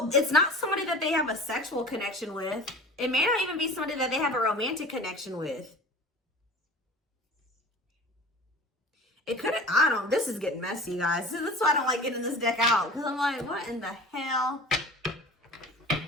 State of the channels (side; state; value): both; normal; correlation 0.39